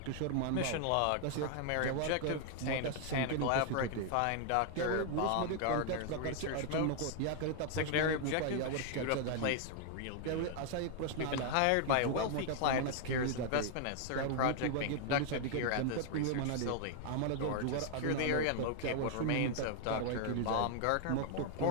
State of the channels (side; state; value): both; different; correlation 0.00